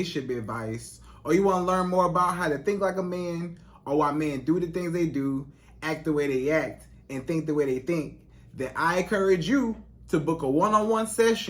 advice, or you want to learn more about how to think like a man, or why men do the things they do, act the way they act, and think the way they think, then I encourage you to book a one-on-one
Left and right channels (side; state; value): both; identical; correlation 1.00